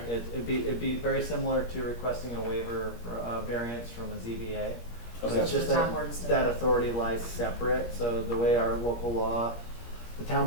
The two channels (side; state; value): right; late; 17 ms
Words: it'd be very similar to requesting a waiver or variance from a ZBA. So Okay. it's just The town that, board instead. that authority lies separate, so the way our local law, the town